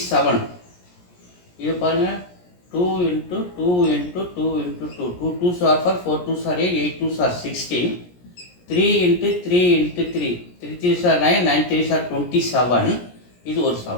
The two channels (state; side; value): late; right; 17 ms